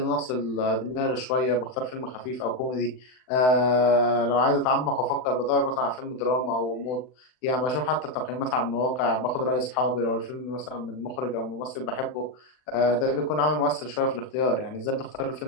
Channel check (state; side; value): late; right; 39 ms